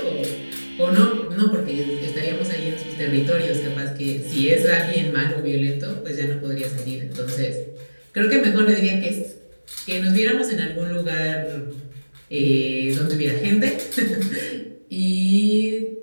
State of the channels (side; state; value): both; inverted; correlation -1.00